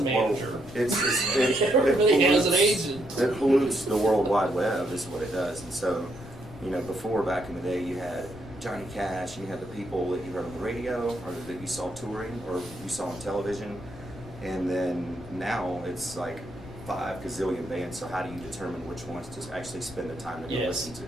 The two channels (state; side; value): noise; left; rumble, 16 dB below the sound